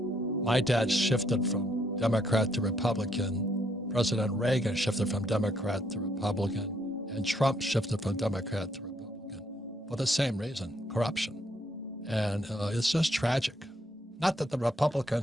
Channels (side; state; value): both; normal; correlation 0.71